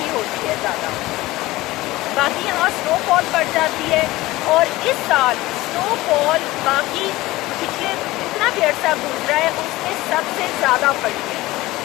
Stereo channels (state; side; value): quieter; right; 18.6 dB